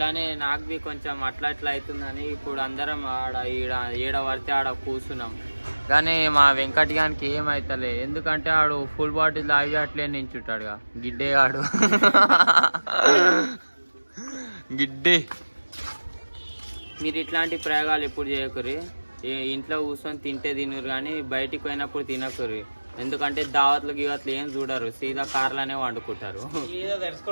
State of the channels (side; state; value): both; inverted; correlation -1.00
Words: నాకు బి కొంచెం అట్లా అవుతుందని ఇప్పుడు అందరం ఆడ ఈడ పడితే ఆడ కూర్చున్నాం. కానీ మా వెంకట్ గానికి ఏమైతలే. ఎందుకంటే ఆడు ఫుల్ బాటిల్ తాగి అట్లే నించుంటాడుగా గిడ్డేగాడు. గిడ్డే. మీరు ఇట్లాంటి ప్రయోగాలు ఎప్పుడు చేయకూరి. ఇంట్లో కూర్చొని తింటే తినరు కానీ బయటికి పోయినప్పుడు తినకూరి. ఎందుకంటే దావత్లు గివత్లు ఏం చూడరు. సీదా కార్లనే వండుకుంటారు.